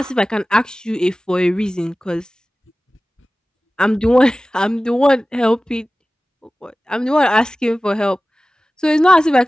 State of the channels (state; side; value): normal; both; correlation 0.97